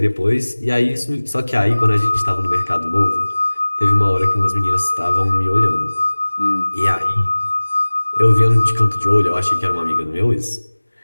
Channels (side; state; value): both; inverted; correlation -1.00